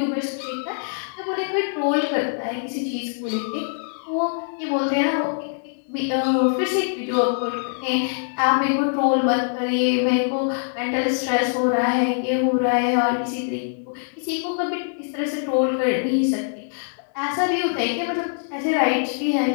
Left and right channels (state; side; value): silent; right; digital silence